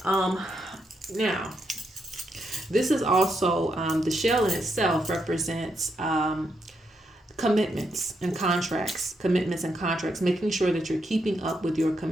Now, this is also the shell in itself represents commitments and contracts, making sure that you're keeping up with your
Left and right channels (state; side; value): normal; both; correlation 0.80